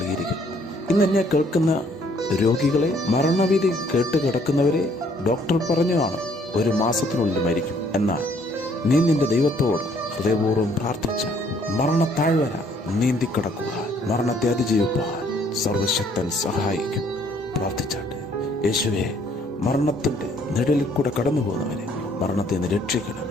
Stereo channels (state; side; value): normal; both; correlation 0.63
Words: ഇന്ന് എന്നെ കേൾക്കുന്ന രോഗികളെ, മരണവിധി കേട്ട് കിടക്കുന്നവരെ, ഡോക്ടർ പറഞ്ഞു കാണും 1 മാസത്തിനുള്ളിൽ മരിക്കും. എന്നാൽ നീ നിന്റെ ദൈവത്തോട് ഹൃദയപൂർവ്വം പ്രാർത്ഥിച്ച മരണത്താഴ്വര നീന്തിക്കിടക്കുവാൻ, മരണത്തെ അതിജീവിപ്പാൻ സർവശക്തൻ സഹായിക്കും. പ്രാർത്ഥിച്ചാട്ടെ. യേശുവേ, മരണത്തിന്റെ നിഴലിൽ കൂടെ കടന്നു പോകുന്നവരെ മരണത്തെ നിന്ന് രക്ഷിക്കണമേ.